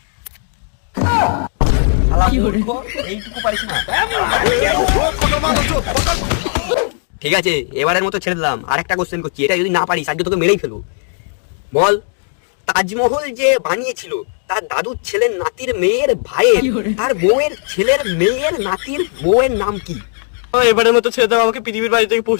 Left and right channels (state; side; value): silent; right; digital silence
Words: শালা মূর্খ, এইটুকু পারিস না? ঠিক আছে, এবারের মতো ছেড়ে দিলাম। আরেকটা কোশ্চেন করছি, এটা যদি না পারিস আজকে তোকে মেরেই ফেলবো। বল, তাজমহল যে বানিয়েছিল তার দাদুর ছেলের নাতির মেয়ের ভাইয়ের তার বউয়ের ছেলের মেয়ের নাতির বউয়ের নাম কি? এবারের মতো ছেড়ে দাও, আমাকে পৃথিবীর বাইরে থেকে